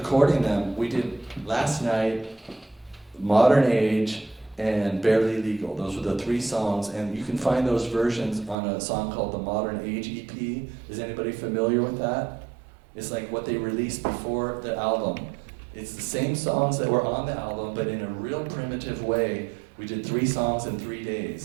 them, we did Last Night, Modern Age, and Barely Legal. Those were the 3 songs, and you can find those versions on a song called the Modern Age EP. Is anybody familiar with that? It's like what they released before the album. It's the same songs that were on the album, but in a real primitive way. We did 3 songs in 3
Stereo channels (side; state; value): left; drops out; at 8.6 s